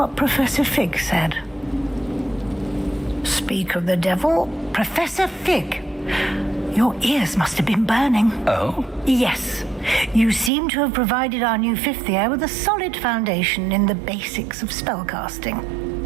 Professor Fig said. Speak of the devil, Professor Fig. Your ears must have been burning. Oh? Yes. You seem to have provided our new fifth year with a solid foundation in the basics of spellcasting.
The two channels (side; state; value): left; drops out; at 10.5 s